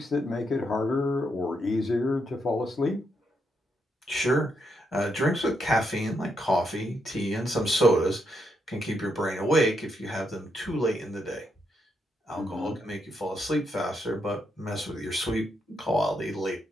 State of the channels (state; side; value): normal; both; correlation 0.79